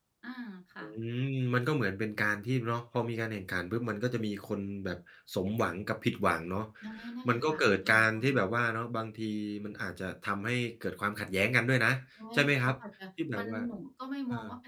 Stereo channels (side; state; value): both; identical; correlation 1.00